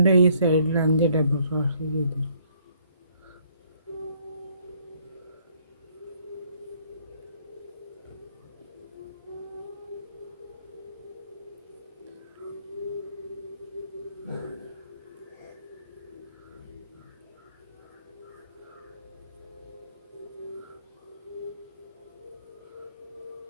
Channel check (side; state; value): both; inverted; correlation -0.64